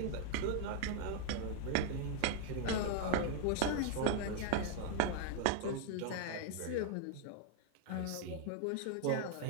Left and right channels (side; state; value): both; different; correlation 0.00